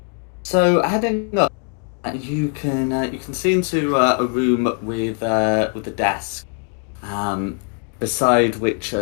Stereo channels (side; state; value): right; quieter; 39.0 dB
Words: So heading up, you can see into a room with a desk, beside which